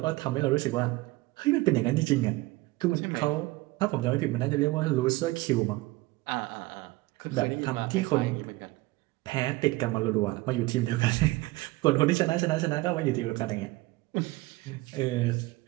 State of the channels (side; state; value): left; quieter; 20.4 dB